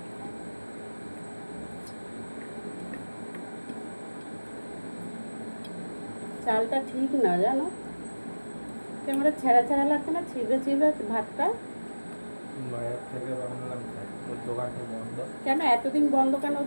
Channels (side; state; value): both; inverted; correlation -1.00